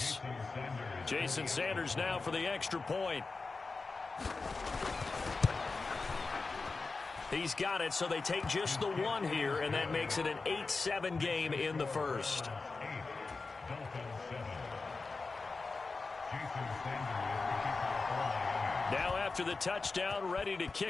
Jason Sanders now for the extra point. He's got it, so they take just the 1 here, and that makes it an 8-7 game in the first. Now after the touchdown, ready to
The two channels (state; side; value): quieter; right; 4.0 dB